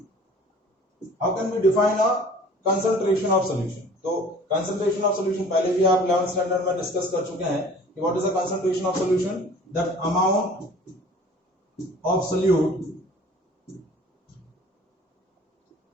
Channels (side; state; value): both; normal; correlation 0.47